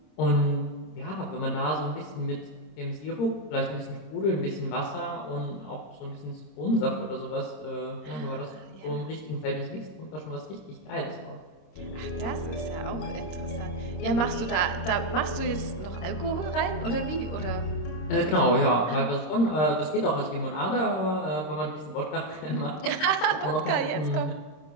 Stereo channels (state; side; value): late; right; 25 ms